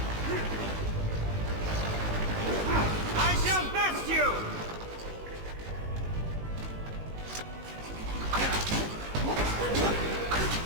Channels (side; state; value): left; late; 19 ms